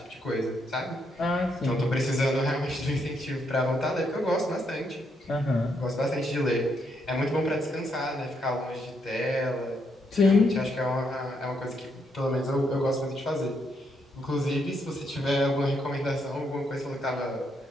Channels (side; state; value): both; normal; correlation 0.77